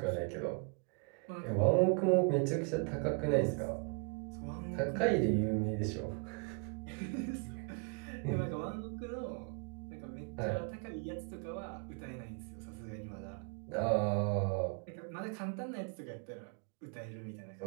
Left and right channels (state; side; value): quieter; left; 36.4 dB